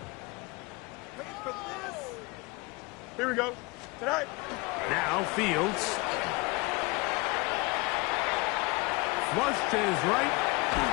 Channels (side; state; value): right; quieter; 25.6 dB